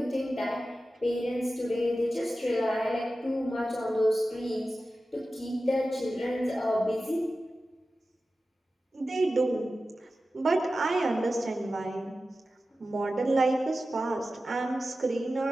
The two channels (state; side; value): normal; both; correlation 0.94